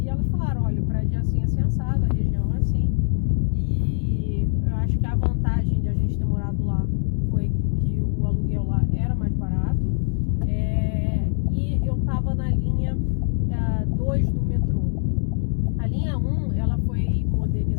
elas falaram, olha, o prédio é assim, assim, assado, a região é assim, e eu acho que a vantagem de a gente ter morado lá foi que o aluguel lá era mais barato, e eu tava na linha 2 do metrô. A linha 1, ela foi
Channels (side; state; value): right; silent; digital silence